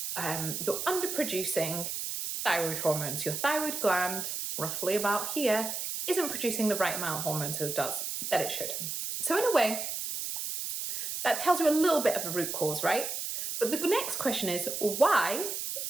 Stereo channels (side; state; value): right; noise; hiss, 4 dB below the sound